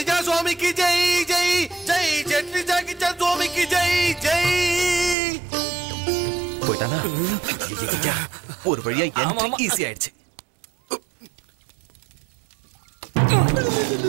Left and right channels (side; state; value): left; drops out; at 5.2 s